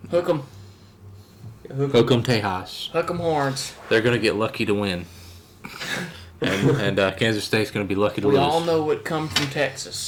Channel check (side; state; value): both; identical; correlation 1.00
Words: Hook 'em. Hook 'em Tejas. Hook 'em horns. They're going to get lucky to win. and Kansas State's going to be lucky to We lose. all know what come from